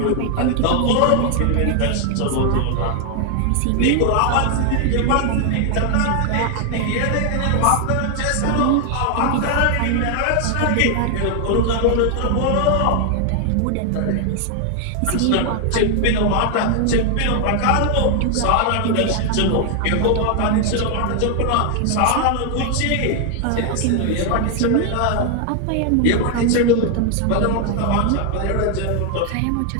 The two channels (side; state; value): both; different; correlation 0.00